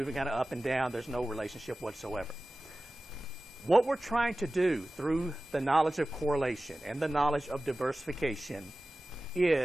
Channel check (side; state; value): both; normal; correlation 0.96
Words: kind of up and down. There's no relationship whatsoever. What we're trying to do through the knowledge of correlation and the knowledge of diversification